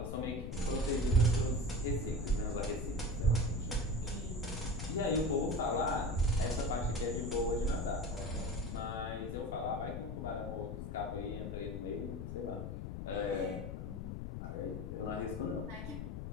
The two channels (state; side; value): noise; left; rumble, 5 dB below the sound